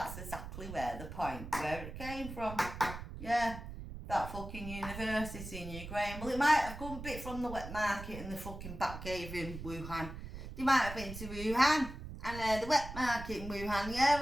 exactly where the point where it came from. Yeah, that fucking university in Ukraine. Well, it might have come a bit from the wet market and the fucking back cave in Wuhan. They might have been to Wuhan and the wet market in Wuhan. Yeah,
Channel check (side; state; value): right; noise; rumble, 10 dB below the sound